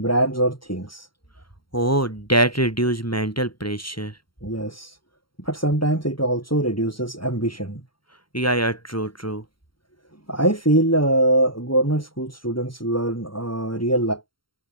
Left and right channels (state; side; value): late; right; 0.73 ms